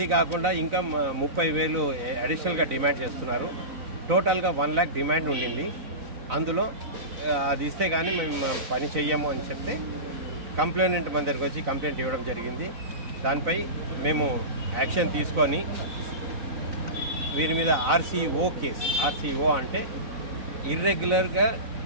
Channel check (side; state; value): left; late; 4.0 ms